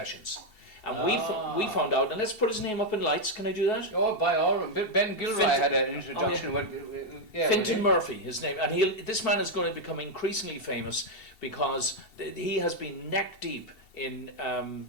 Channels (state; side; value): late; right; 2.7 ms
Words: And we found out, and let's put his name up in lights, can I do that? Oh, by all means. Ben Gilroy had an introduction. Fintan Murphy, his name. And this man is going to become increasingly famous because he has been neck deep in